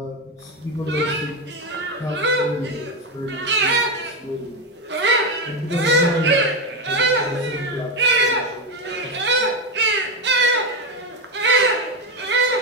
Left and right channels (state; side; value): normal; both; correlation 0.11